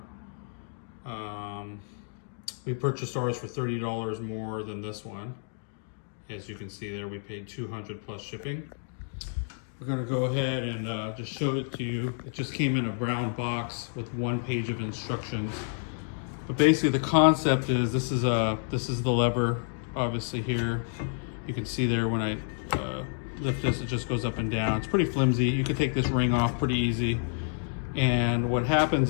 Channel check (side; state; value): right; silent; 58 dB below the other